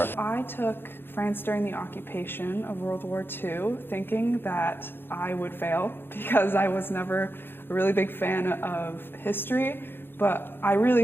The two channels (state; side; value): late; right; 0.10 ms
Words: I took France during the occupation of World War II thinking that I would fail because I was never a really big fan of history. But I really